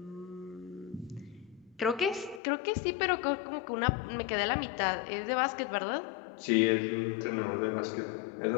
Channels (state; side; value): drops out; right; at 2.4 s